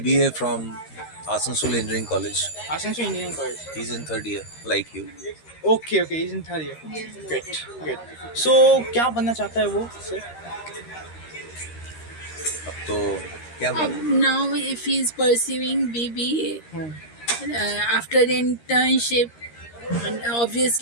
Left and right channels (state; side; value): late; right; 13 ms